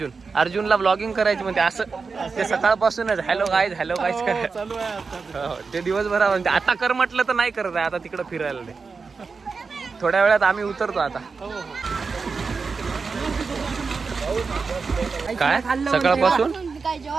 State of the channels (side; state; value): left; quieter; 4.8 dB